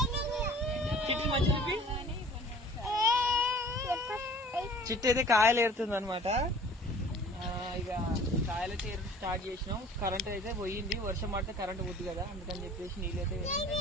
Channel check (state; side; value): normal; both; correlation 0.48